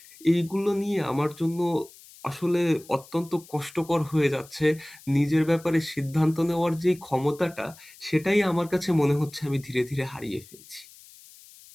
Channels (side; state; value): left; noise; hiss, 22 dB below the sound